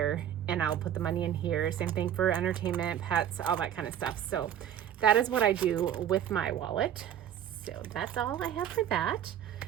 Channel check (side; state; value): left; quieter; 10.1 dB